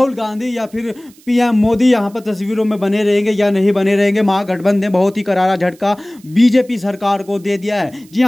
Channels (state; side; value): noise; right; hiss, 28 dB below the sound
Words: गांधी या फिर पीएम मोदी यहां पर तस्वीरों में बने रहेंगे या नहीं बने रहेंगे। महागठबंधन ने बहुत ही करारा झटका बीजेपी सरकार को दे दिया है। जी